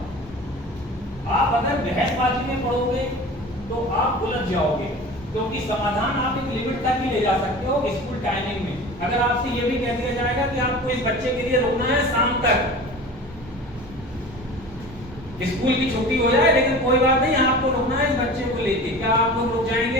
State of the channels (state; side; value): normal; both; correlation 0.37